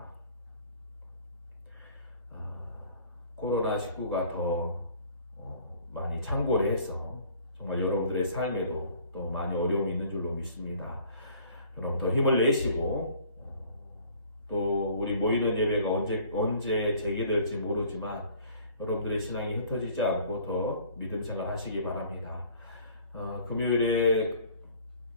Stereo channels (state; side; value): inverted; both; correlation -0.53